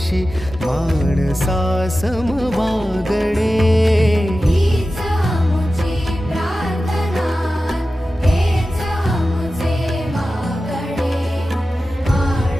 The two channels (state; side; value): normal; both; correlation 0.94